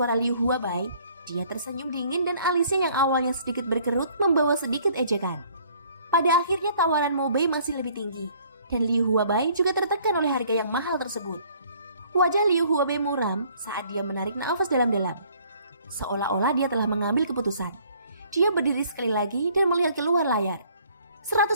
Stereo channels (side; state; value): both; inverted; correlation -0.59